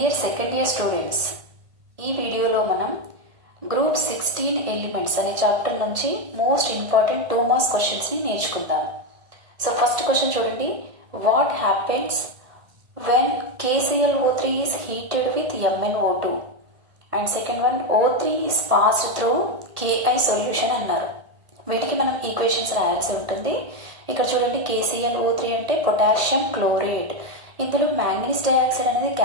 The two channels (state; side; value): late; left; 1.6 ms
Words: second year students, ఈ వీడియోలో మనం గ్రూప్ 16 ఎలిమెంట్స్ అనే చాప్టర్ నుంచి మోస్ట్ ఇంపార్టెంట్ 2 మార్క్స్ క్వశ్చన్స్ ని నేర్చుకుందాం. సో ఫస్ట్ క్వశ్చన్ చూడండి. What happens when KClO3 is heated with MnO2 and second one O3 is passed through Ki solution అన్నారు. వీటికి మనం ఈక్వేషన్స్ రాయాల్సి ఉంటుంది. ఇక్కడ చూడండి, KClO3 అంటే పొటాషియం క్లోరైడ్. ఇందులో మ్యాంగనీస్ డయాక్సైడ్ అనేది